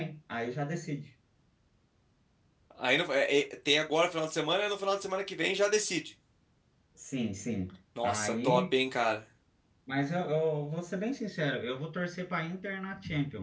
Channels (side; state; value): both; identical; correlation 1.00